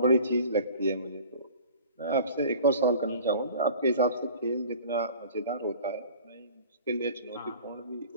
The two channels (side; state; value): both; inverted; correlation -0.44